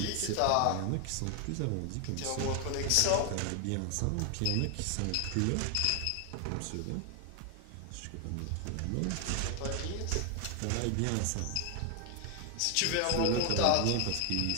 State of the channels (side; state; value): both; different; correlation 0.00